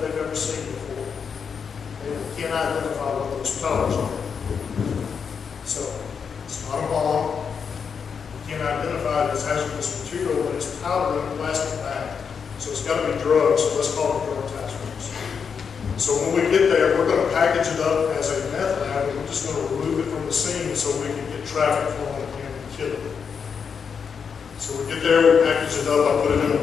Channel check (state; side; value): quieter; right; 6.4 dB